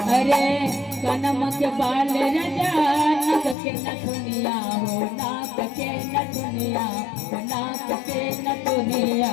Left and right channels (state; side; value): drops out; right; at 3.6 s